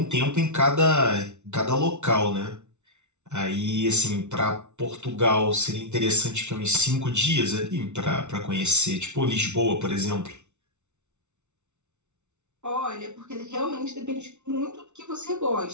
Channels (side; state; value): left; late; 0.82 ms